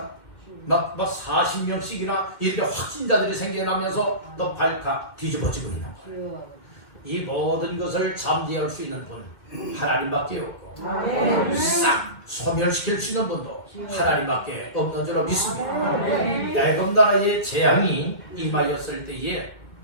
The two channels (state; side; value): late; right; 2.1 ms